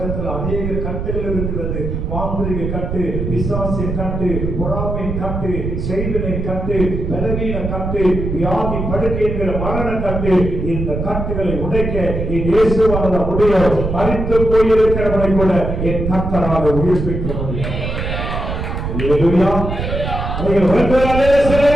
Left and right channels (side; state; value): right; noise; rumble, 3 dB below the sound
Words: அநேக கட்டுகள் இருக்கிறது. மாந்திரிக கட்டு, பிசாசின் கட்டு, பொறாமையின் கட்டு, செய்வினை கட்டு, பலவீன கட்டு, வியாதி படுக்கை என்கிற மரண கட்டு. இந்த கட்டுகளை உடைக்க என் இயேசுவால முடியும். மரித்து போயிருக்கிறவனை கூட என் கர்த்தரால் உயிர்ப்பிக்க முடியும். அல்லேலூயா. உங்களை